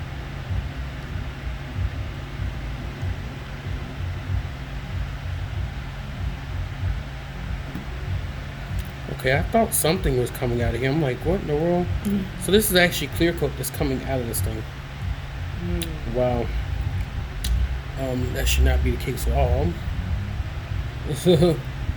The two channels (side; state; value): both; identical; correlation 1.00